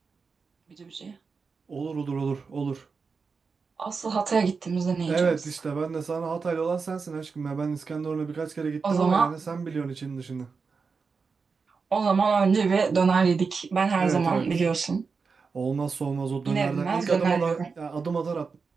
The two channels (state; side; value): quieter; left; 5.0 dB